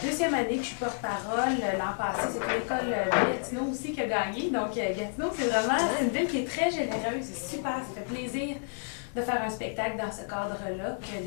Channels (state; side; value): silent; right; digital silence